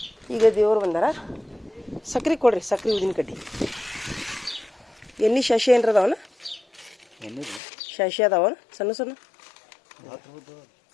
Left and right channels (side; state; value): right; drops out; at 7.6 s